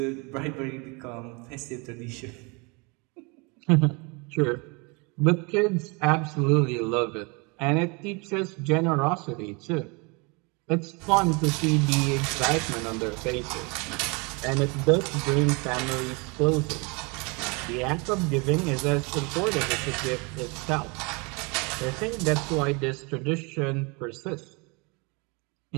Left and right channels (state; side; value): quieter; left; 30.0 dB